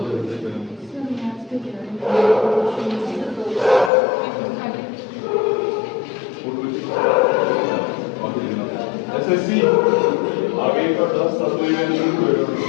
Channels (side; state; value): right; drops out; at 3.9 s